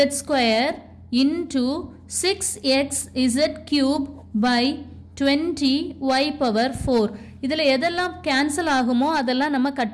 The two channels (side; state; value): both; identical; correlation 1.00